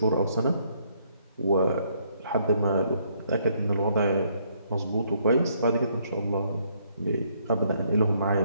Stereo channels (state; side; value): inverted; both; correlation -0.69